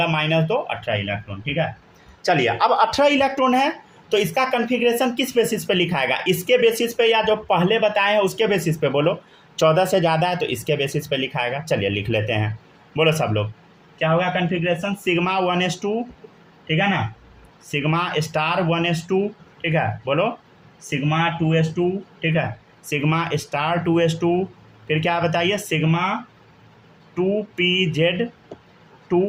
माइनस 2 18 इलेक्ट्रॉन, ठीक है। चलिए अब 18 इलेक्ट्रॉन है तो इसका कन्फिग्रेशन किस बेसिस पे लिखाएगा? इसके बेसिस पे या जो पहले बताए हैं उसके बेसिस पे? बोलो 14 से ज़्यादा है तो इसके बेसिस पे लिखाएगा। चलिए लिख लेते हैं, बोलो सब लोग, क्या होगा कन्फिग्रेशन? सिग्मा 1s2, ठीक है ना, सिग्मा स्टार 1s2, ठीक है, बोलो सिग्मा 2s2, ठीक है, सिग्मा स्टार 2s2, फिर क्या बताइए, सिग्मा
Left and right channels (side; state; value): both; identical; correlation 1.00